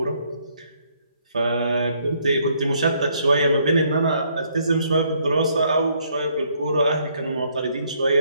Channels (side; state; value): both; inverted; correlation -0.69